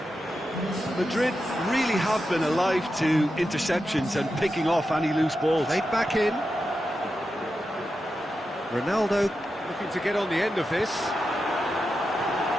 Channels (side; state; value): both; normal; correlation 0.89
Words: Madrid really have been alive to interceptions and picking off any loose balls. Played back in. Ronaldo looking to get on the end of this.